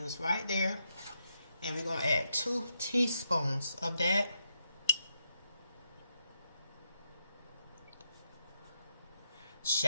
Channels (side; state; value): both; inverted; correlation -0.82